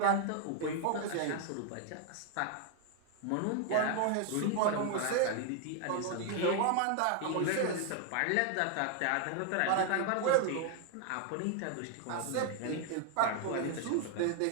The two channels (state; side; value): different; both; correlation 0.00